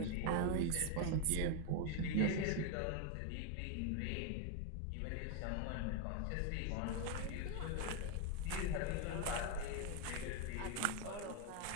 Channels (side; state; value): both; different; correlation 0.01